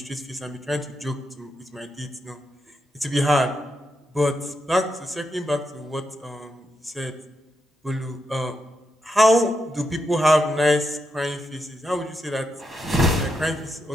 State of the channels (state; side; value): normal; both; correlation 0.84